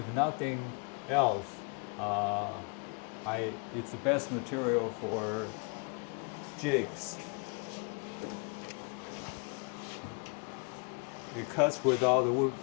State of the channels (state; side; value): quieter; right; 35.3 dB